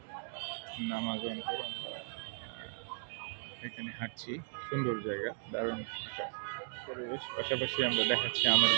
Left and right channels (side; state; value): left; silent; digital silence